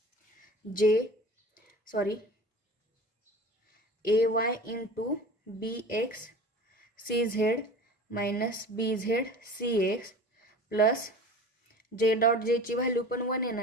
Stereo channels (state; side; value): normal; both; correlation 0.39